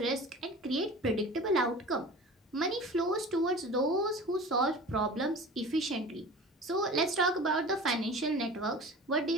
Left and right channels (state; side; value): normal; both; correlation 0.38